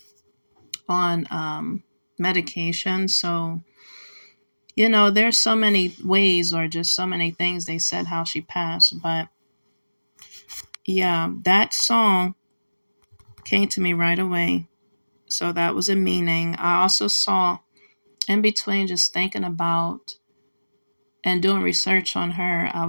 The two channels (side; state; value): both; inverted; correlation -1.00